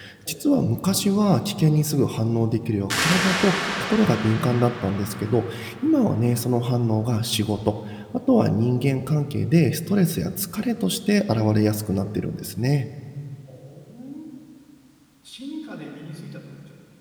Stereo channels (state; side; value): identical; both; correlation 1.00